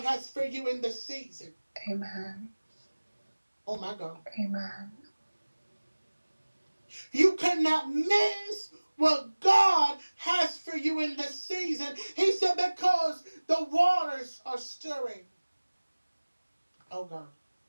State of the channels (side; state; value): both; inverted; correlation -1.00